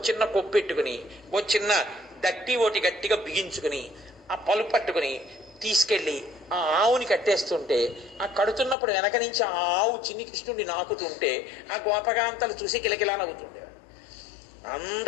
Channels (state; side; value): drops out; right; at 8.8 s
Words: చిన్న కొప్పు పెట్టుకుని, ఓ చిన్న దట్టి ఓటి గట్టిగా బిగించుకుని ఆ పలు పట్టుకుని తీసుకెళ్ళి ఆ ఆవుని కట్టేస్తుంటే, ఆ కడుతున్నప్పుడు వెనక నుంచి ఆ ఆవు చిన్ని కృష్ణుడిని నాకుతుంటే ఆ గోపకాంతలు చూసి కిలకిలా నవ్వుతుండేవాడు.